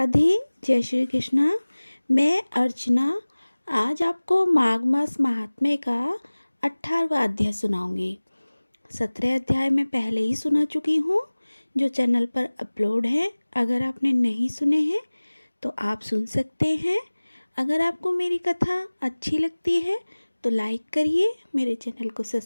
जय श्री कृष्णा। मैं अर्चना आज आपको माघ मास महात्म्य का 18वां अध्याय सुनाऊंगी। 17 अध्याय मैं पहले ही सुना चुकी हूँ जो चैनल पर अपलोड है। अगर आपने नहीं सुने हैं तो आप सुन सकते हैं। अगर आपको मेरी कथा अच्छी लगती है तो लाइक करिए, मेरे चैनल को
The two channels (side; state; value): both; inverted; correlation -1.00